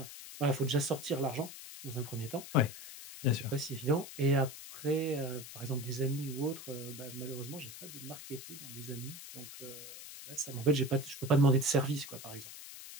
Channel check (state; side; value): noise; left; hiss, 13 dB below the sound